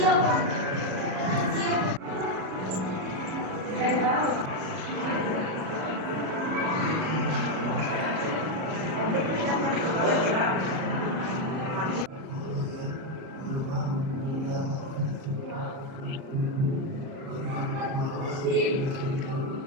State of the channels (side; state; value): left; late; 37 ms